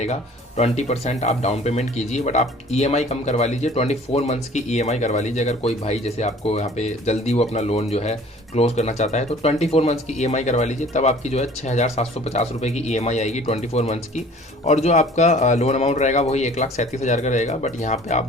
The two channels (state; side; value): normal; both; correlation 0.50